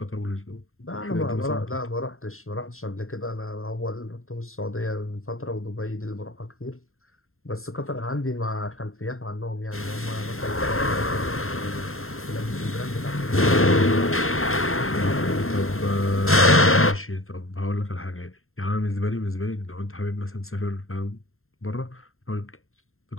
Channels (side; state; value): right; late; 0.61 ms